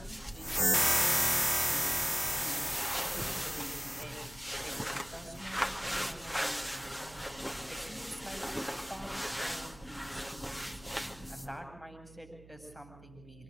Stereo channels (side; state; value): right; noise; hum, 20 dB below the sound